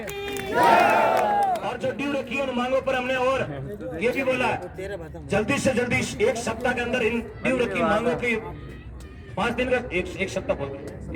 और जो ड्यू रखी है उन मांगों पर हमने और ये भी बोला जल्दी से जल्दी 1 सप्ताह के अंदर इन ड्यू रखी मांगों की 5 दिन का एक सप्ताह बोल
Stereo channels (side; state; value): both; identical; correlation 1.00